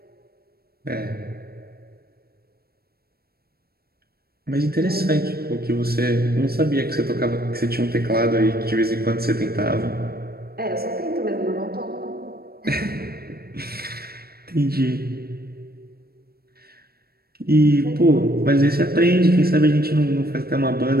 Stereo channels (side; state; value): left; late; 0.45 ms